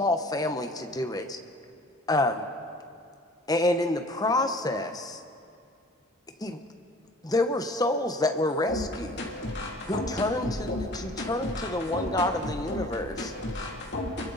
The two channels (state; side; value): normal; both; correlation 0.48